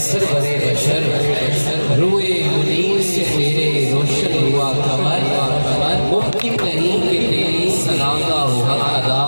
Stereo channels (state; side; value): inverted; both; correlation -1.00